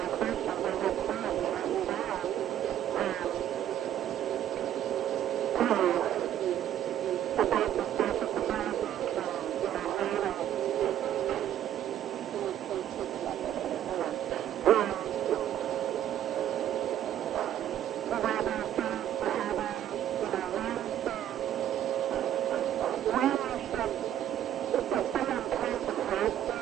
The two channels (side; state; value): left; quieter; 11.3 dB